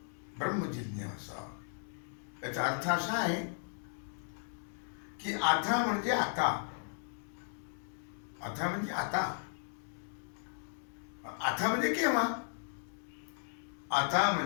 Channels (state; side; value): silent; right; digital silence